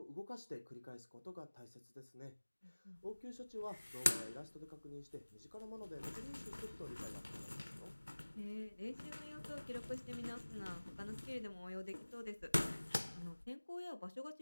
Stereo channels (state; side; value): inverted; both; correlation -1.00